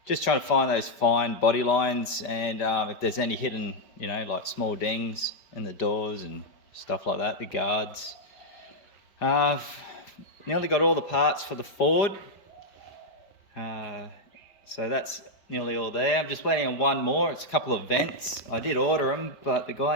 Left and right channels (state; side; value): late; right; 5.0 ms